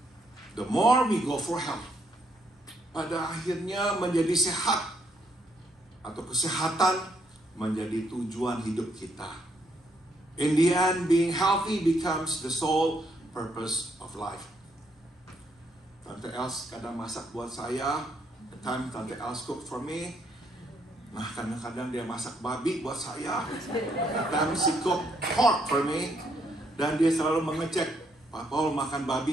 the more we go for health. Pada akhirnya menjadi sehat atau kesehatan menjadi tujuan hidup kita. In the end, being healthy becomes the sole purpose of life. Tante Els kadang masak buat saya. The time Tante Els cook for me. Nah kadang-kadang dia masak babi buat saya. Kadang she cook pork for me. Dan dia selalu mengecek, Pak Paul makan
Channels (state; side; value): normal; both; correlation 0.73